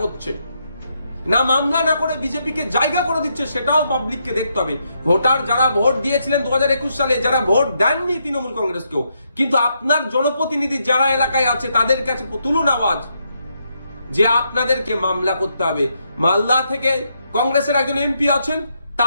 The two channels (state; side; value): inverted; both; correlation -0.79